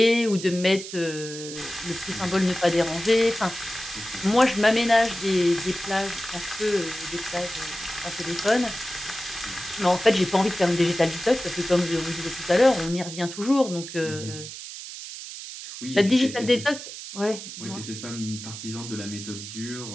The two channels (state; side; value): noise; right; hiss, 11 dB below the sound